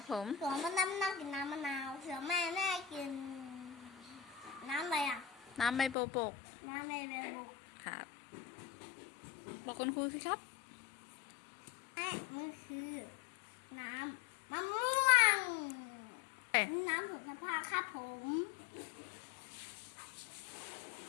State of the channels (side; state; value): right; drops out; at 6.0 s